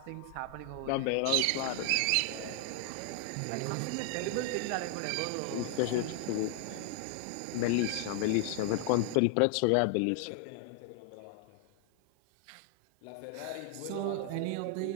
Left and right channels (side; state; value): both; different; correlation 0.00